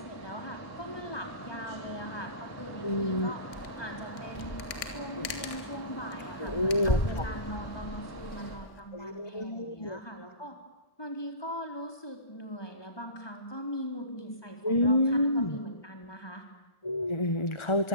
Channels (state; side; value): late; right; 1.6 ms